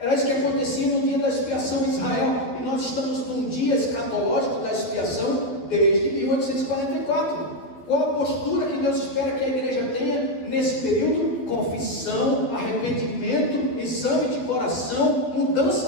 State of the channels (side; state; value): right; late; 12 ms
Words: isso que acontecia no dia da expiação em Israel. E nós estamos num dia escatológico da expiação desde 1844. Qual a postura que Deus espera que a igreja tenha nesse período? Confissão, arrependimento, exame de coração,